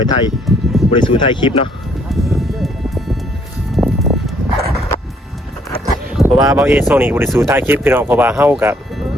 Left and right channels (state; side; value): normal; both; correlation 0.67